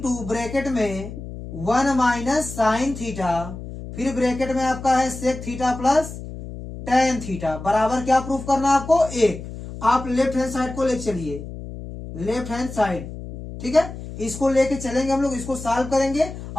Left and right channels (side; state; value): left; noise; hum, 11 dB below the sound